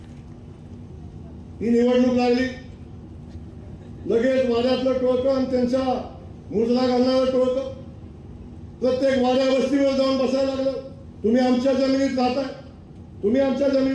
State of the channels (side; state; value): both; identical; correlation 1.00